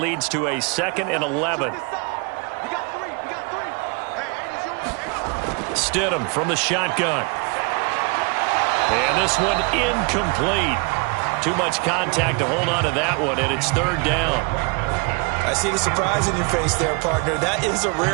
to a 2nd and 11. We got three. Hey, 8 is yours. Stidham from the shotgun. And this one incomplete. Too much contact to hold on to that one, and it's 3rd down. I see the surprise in your face there, partner. That is a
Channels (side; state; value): left; quieter; 31.8 dB